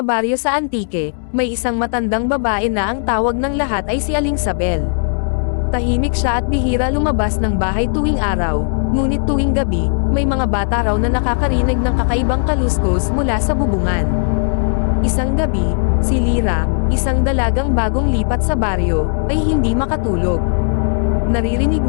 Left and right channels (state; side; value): silent; right; digital silence